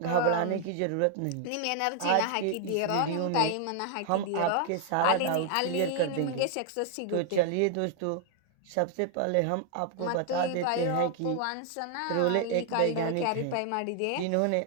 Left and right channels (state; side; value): different; both; correlation 0.00